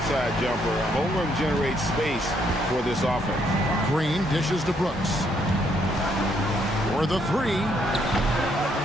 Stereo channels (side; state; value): both; normal; correlation 0.72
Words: jumper, Holmgren generates space for this offense. Green dishes to Brooks. For the three.